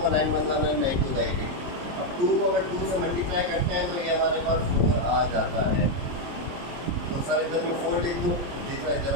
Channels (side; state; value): left; late; 23 ms